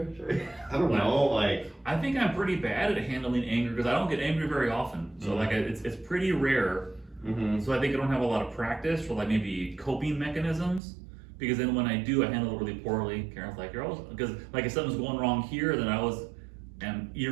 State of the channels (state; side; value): drops out; left; at 10.8 s